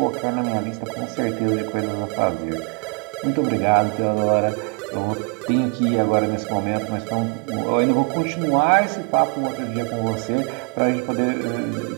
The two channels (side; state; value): left; quieter; 36.1 dB